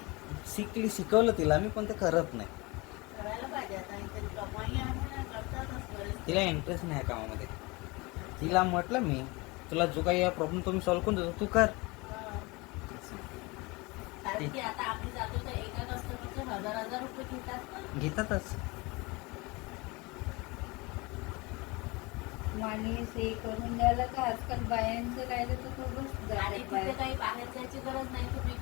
शिकवलं तिला मी, पण ते करत नाही. करायला पाहिजे आता, इथे कमाई आहे ना, करतातच बरेच. तिला इंटरेस्ट नाही या कामामध्ये. तिला म्हटलं मी, तुला जो काही प्रॉब्लेम तो मी सॉल्व्ह करून देतो, तू कर. कारण की आता आम्ही जातो तर एका कस्टमरचे 1000 रुपये घेतात ना. घेतातच. माणूस हे करून द्यायला का आजकाल बायांचं राहिलं तर खूपच आणि जातात तिथे बाया. काही बाहेर जायची गरज नाही, तुम्ही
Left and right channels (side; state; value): right; quieter; 25.1 dB